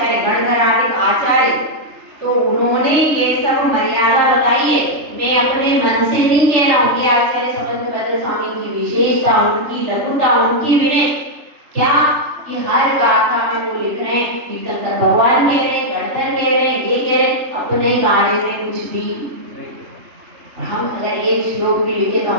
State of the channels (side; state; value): left; late; 3.7 ms